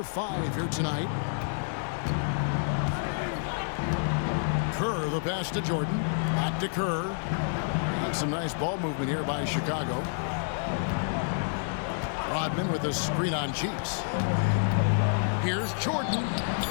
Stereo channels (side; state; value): right; silent; digital silence